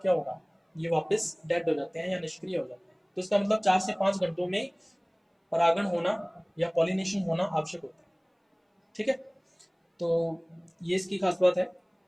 क्या होगा? ये वापस डेड हो जाते हैं या निष्क्रिय हो जाते हैं। तो इसका मतलब 4 से 5 घंटों में परागण होना या पॉलिनेशन होना आवश्यक होता है, ठीक है। तो ये इसकी खास बात है।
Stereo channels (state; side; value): identical; both; correlation 1.00